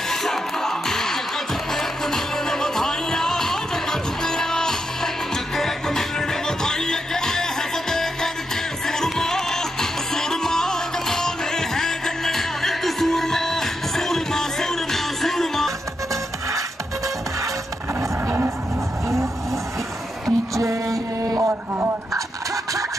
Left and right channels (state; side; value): normal; both; correlation 0.84